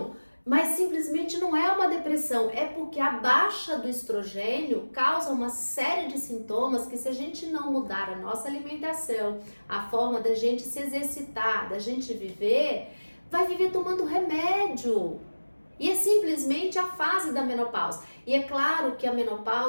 mas simplesmente não é uma depressão, é porque a baixa do estrogênio causa uma série de sintomas que, se a gente não mudar a nossa alimentação, a forma da gente se exercitar, da gente viver, vai viver tomando remédio. E é simplesmente a fase da menopausa. E é claro que a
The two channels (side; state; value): both; inverted; correlation -1.00